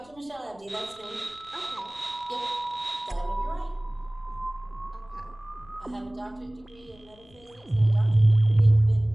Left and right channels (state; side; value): noise; left; rumble, 27 dB below the sound